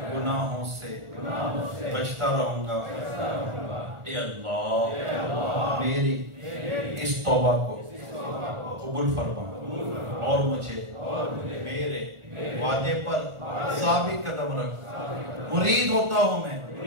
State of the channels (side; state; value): left; late; 1.4 ms